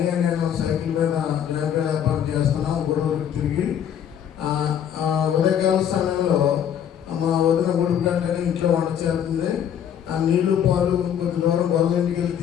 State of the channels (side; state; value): right; quieter; 9.2 dB